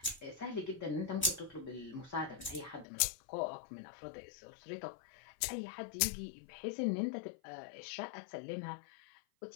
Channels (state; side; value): drops out; right; at 2.9 s